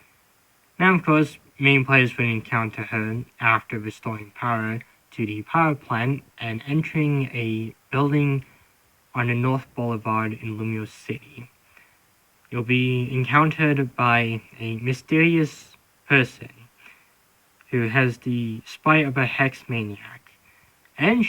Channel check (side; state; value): both; identical; correlation 1.00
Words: Now, of course, main players would encounter her after restoring power to the power plant and entering a building on the North Boulevard in Lumiere City. You'll be encountered by a mysterious person who has the spite of a hex maniac, and